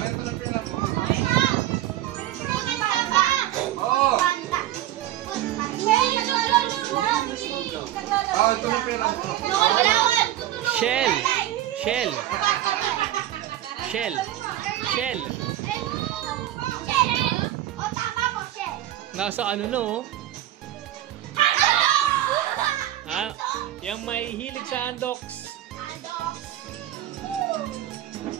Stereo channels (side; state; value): left; quieter; 13.4 dB